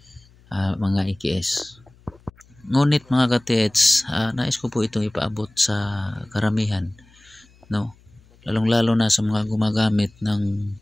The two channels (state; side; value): noise; left; hum, 28 dB below the sound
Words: mga IKS. Ngunit mga katets, nais ko po itong ipaabot sa karamihan, no? Lalong-lalo na sa mga gumagamit ng